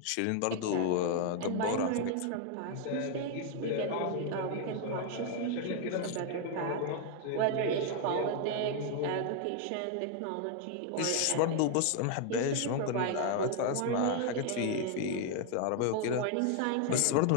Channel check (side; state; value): both; different; correlation 0.00